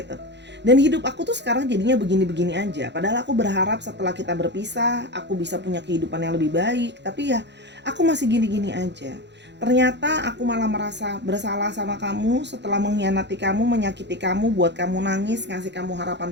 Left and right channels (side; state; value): left; late; 0.51 ms